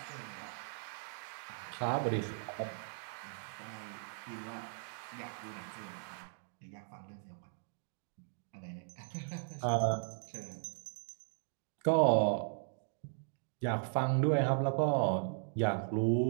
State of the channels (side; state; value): left; silent; digital silence